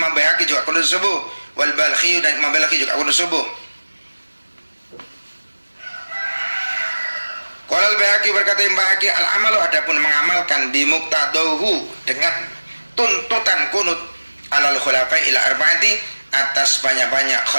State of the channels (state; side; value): inverted; both; correlation -1.00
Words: Baihaqi juga kunut subuh. Wal Balkhi dan Imam Balkhi juga kunut subuh. Qala Al-Baihaqi berkata Imam Baihaqi al-amalu adapun mengamalkan bimuqtadahu dengan tuntutan kunut alal khulafai ila arba'ati atas banyak-banyak